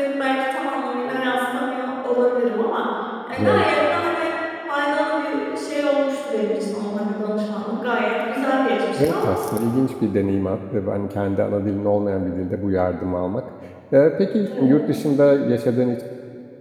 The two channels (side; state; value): both; identical; correlation 1.00